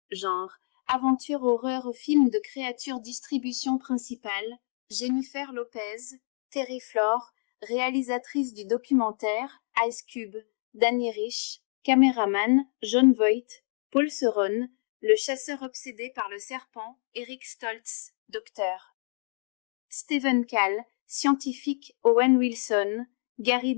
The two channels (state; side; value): silent; right; 59 dB below the other